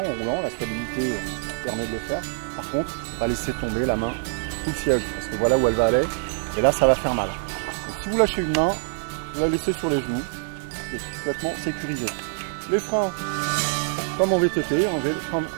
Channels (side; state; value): left; silent; digital silence